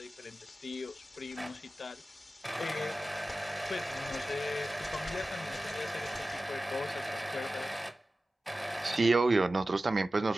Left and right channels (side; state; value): both; normal; correlation 0.95